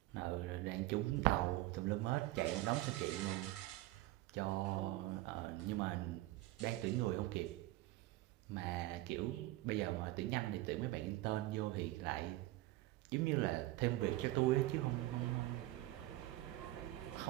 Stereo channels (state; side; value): quieter; left; 17.5 dB